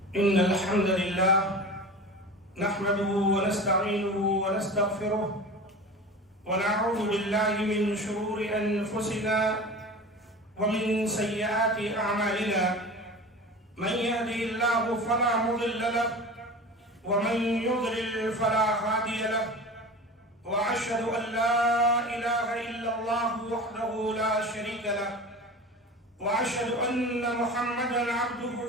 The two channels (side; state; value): both; normal; correlation 0.34